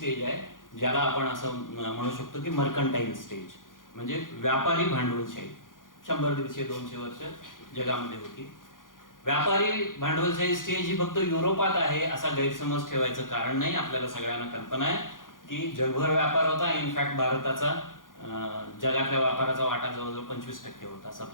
आहे ज्याला आपण असं म्हणू शकतो की मर्कंटाईल स्टेज, म्हणजे व्यापारी भांडवलशाही. 100, 150, 200 वर्ष जगामध्ये होती. व्यापारी भांडवलशाही स्टेज ही फक्त युरोपात आहे असा गैरसमज ठेवायचं कारण नाही. आपल्याला सगळ्यांना कल्पना आहे की जगभर व्यापार होता. इनफॅक्ट भारताचा जगातल्या व्यापाराचा वाटा जवळजवळ 25% होता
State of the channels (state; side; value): late; right; 0.89 ms